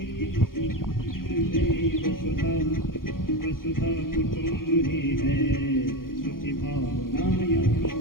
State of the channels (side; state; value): right; late; 0.91 ms